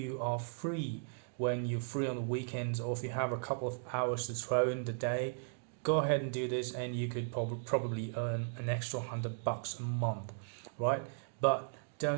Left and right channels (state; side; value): silent; left; digital silence